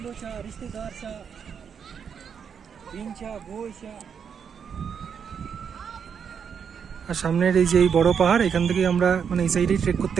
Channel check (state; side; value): quieter; left; 7.1 dB